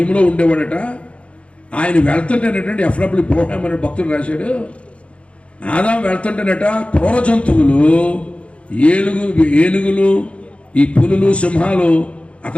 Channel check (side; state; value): right; late; 0.061 ms